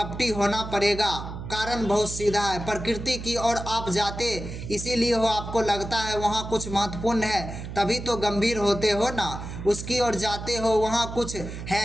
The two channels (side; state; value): right; noise; hum, 9 dB below the sound